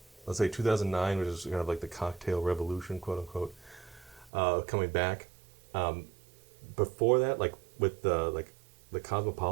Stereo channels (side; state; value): left; drops out; at 4.3 s